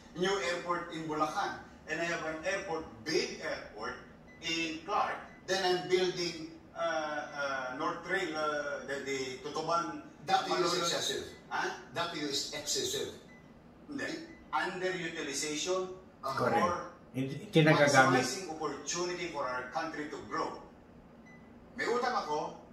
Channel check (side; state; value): both; identical; correlation 1.00